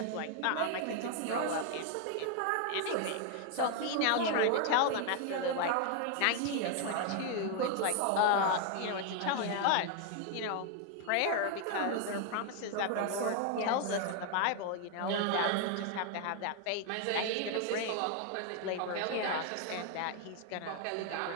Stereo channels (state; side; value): different; both; correlation 0.00